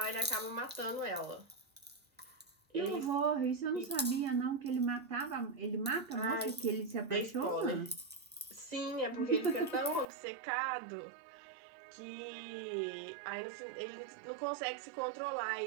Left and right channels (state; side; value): drops out; left; at 10.1 s